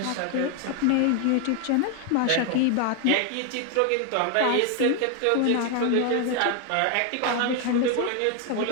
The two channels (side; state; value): both; different; correlation 0.01